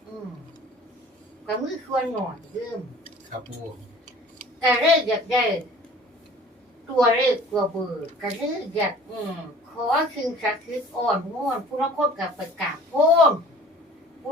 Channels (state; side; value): normal; both; correlation 0.48